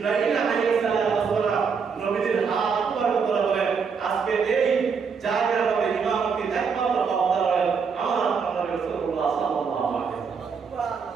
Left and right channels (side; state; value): left; quieter; 5.8 dB